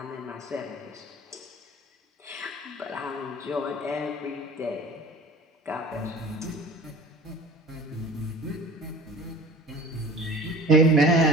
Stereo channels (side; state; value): both; normal; correlation 0.43